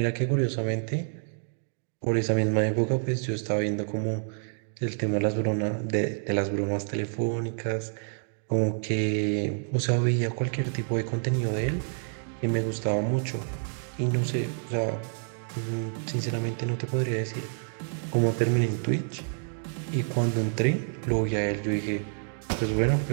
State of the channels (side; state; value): left; silent; digital silence